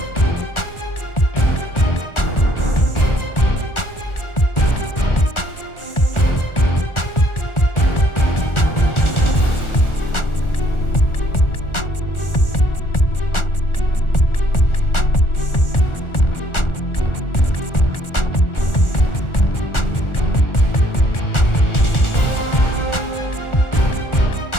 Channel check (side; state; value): right; late; 1.4 ms